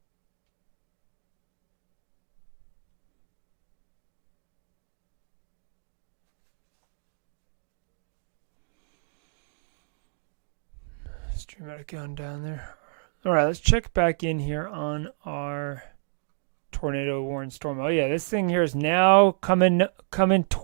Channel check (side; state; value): left; silent; digital silence